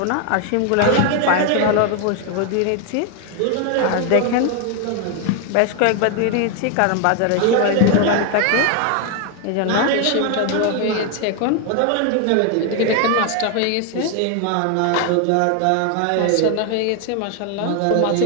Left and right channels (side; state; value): both; different; correlation 0.01